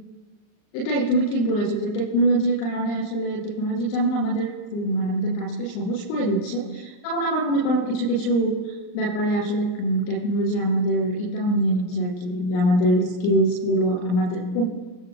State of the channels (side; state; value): right; late; 39 ms